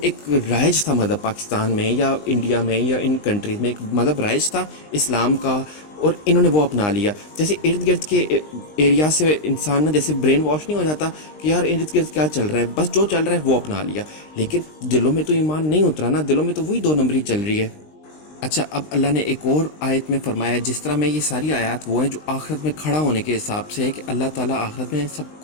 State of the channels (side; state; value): right; late; 20 ms